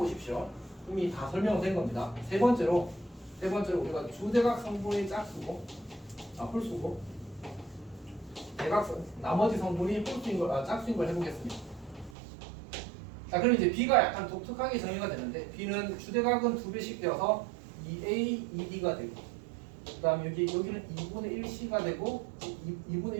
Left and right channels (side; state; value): left; drops out; at 12.2 s